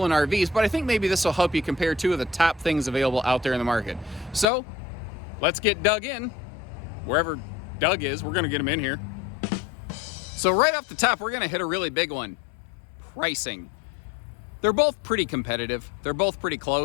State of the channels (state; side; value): drops out; right; at 4.5 s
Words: RVs, but I think maybe this will help you compare two of the top things available out there in the market. So let's get dug in. Wherever Doug is, we're going to get him in here. So right off the top, we're going to hit a really big one. Pricing. They're both pretty competitive. They're both pretty